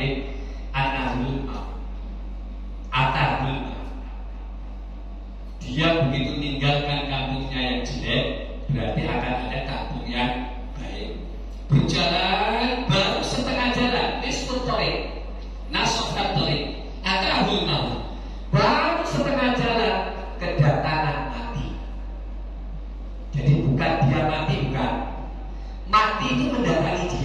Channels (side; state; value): both; identical; correlation 1.00